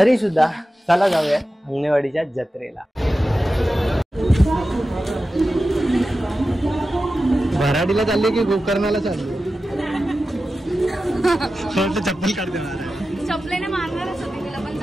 सुद्धा चला जाऊया अंगणेवाडीच्या जत्रेला. भराडीला चालले की गोकर्णाला चालले? चप्पल काढते. चपलेने मारणारच होते तिला, पण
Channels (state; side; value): normal; both; correlation 0.93